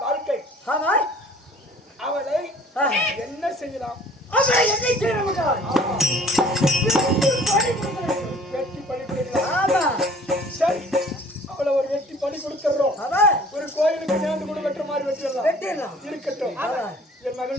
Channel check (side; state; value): both; normal; correlation 0.51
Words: வாழ்க்கை. அவளை என்ன செய்யலாம்? வெட்டி பணி கொடுக்கலாம். சரி, அவளை ஒரு வெட்டி பணி கொடுத்துறோம். ஒரு கோயிலுக்கு நேர்ந்து கூட வெட்டுற மாதிரி வெட்டிடலாம். இருக்கட்டும். என்